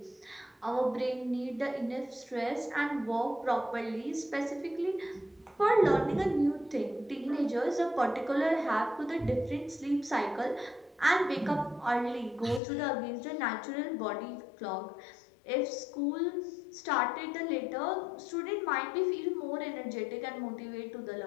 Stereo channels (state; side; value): drops out; right; at 12.6 s